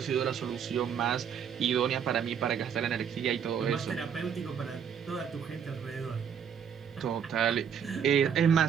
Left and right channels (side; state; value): left; quieter; 7.7 dB